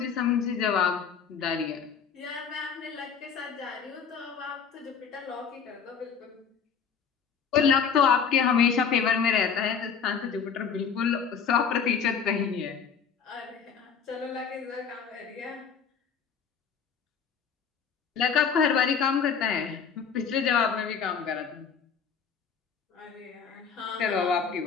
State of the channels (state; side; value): quieter; right; 6.6 dB